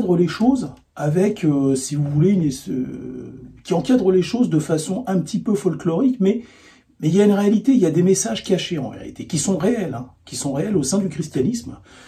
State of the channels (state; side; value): identical; both; correlation 1.00